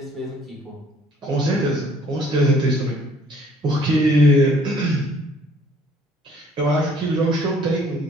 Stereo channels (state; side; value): normal; both; correlation 0.59